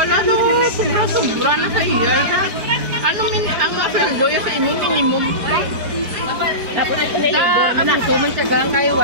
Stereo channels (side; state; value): left; late; 5.0 ms